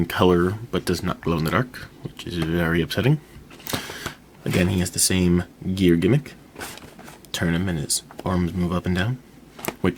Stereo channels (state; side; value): identical; both; correlation 1.00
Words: color but does not glow in the dark, which is very upsetting. Again, he has the same gear gimmick. Turn him and his arms move up and down,